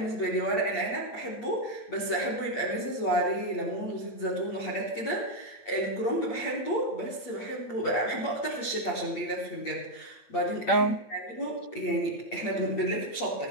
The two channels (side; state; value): right; late; 8.5 ms